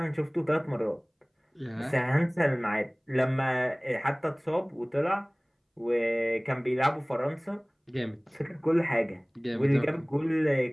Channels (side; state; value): both; identical; correlation 1.00